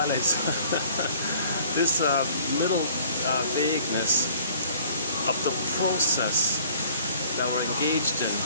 zone. This middle vagueness of the process that we're engaged in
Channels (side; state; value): both; inverted; correlation -0.53